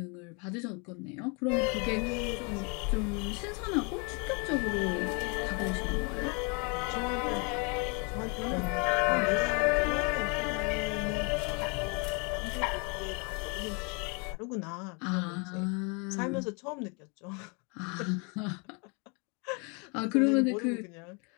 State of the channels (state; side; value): quieter; right; 33.6 dB